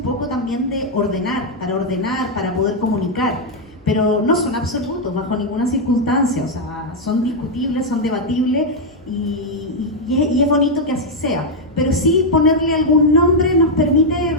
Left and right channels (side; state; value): both; normal; correlation -0.01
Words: poco también de ordenar, para poder comunicar, pero no son absolutos bajo ninguna circunstancia, o sea, son discutibles, son debatibles, y es bonito que así sea. Pero sí ponerle algún nombre nos permite